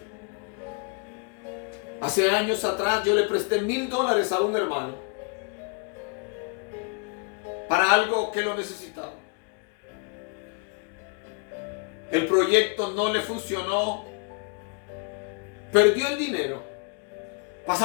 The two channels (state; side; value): quieter; right; 36.6 dB